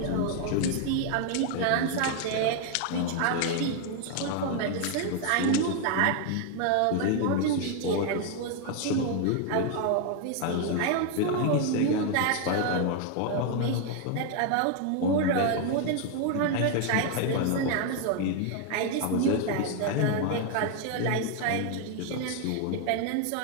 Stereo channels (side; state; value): both; different; correlation 0.00